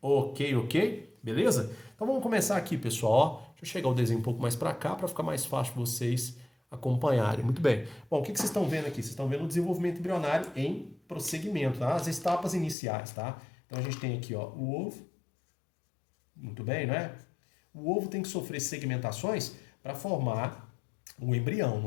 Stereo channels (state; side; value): drops out; right; at 12.8 s